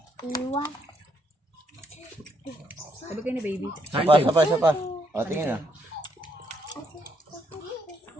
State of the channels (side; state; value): both; normal; correlation 0.73